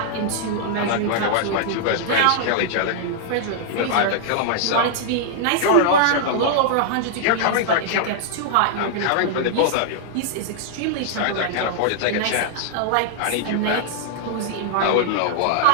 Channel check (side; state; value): both; different; correlation -0.01